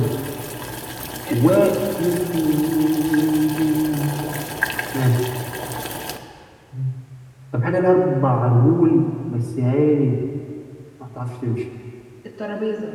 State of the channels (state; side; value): identical; both; correlation 1.00